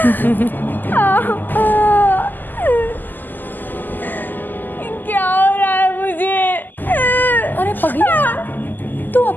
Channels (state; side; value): late; right; 0.088 ms